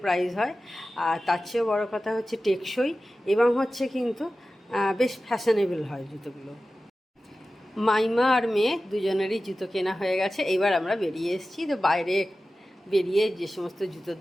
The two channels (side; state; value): both; normal; correlation 0.95